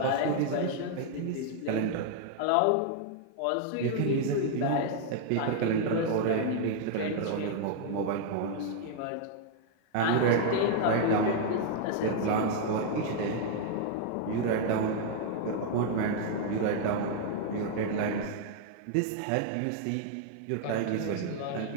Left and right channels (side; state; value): both; different; correlation 0.00